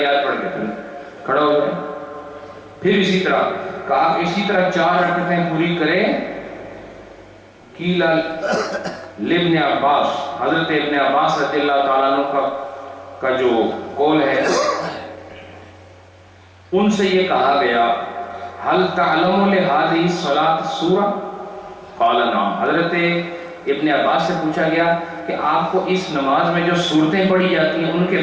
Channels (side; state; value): both; identical; correlation 1.00